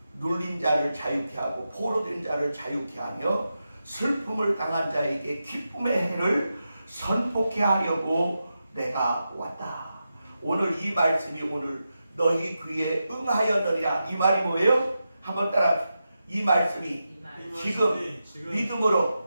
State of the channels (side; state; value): both; inverted; correlation -0.89